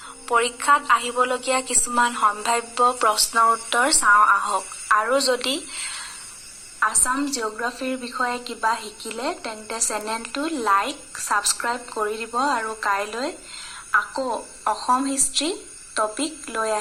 পৰীক্ষাত আহিবলগীয়া কিছুমান সম্ভাৱ্য প্ৰশ্নৰ উত্তৰ চাওঁ আহক। আৰু যদি আসাম জিঅ'গ্ৰাফীৰ বিষয়ে কিবা শিকিলে তেন্তে চেনেলটো লাইক, ছাবস্ক্ৰাইব কৰি দিব আৰু কাইলৈ আকৌ অসম হিষ্ট্ৰী টপিক লৈ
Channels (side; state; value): both; identical; correlation 1.00